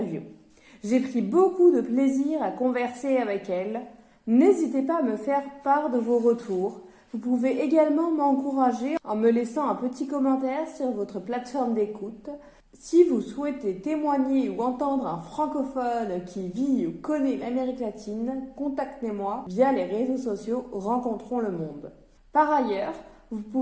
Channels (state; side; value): identical; both; correlation 1.00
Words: J'ai pris beaucoup de plaisir à converser avec elle. N'hésitez pas à me faire part de vos retours. Vous pouvez également m'encourager en me laissant un petit commentaire sur votre plateforme d'écoute. Si vous souhaitez témoigner ou entendre un francophone qui vit ou connaît l'Amérique latine, contactez-moi via les réseaux sociaux Rencontrons le Monde. Par ailleurs, vous